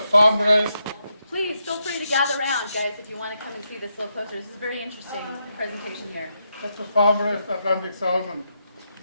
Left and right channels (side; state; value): both; inverted; correlation -0.82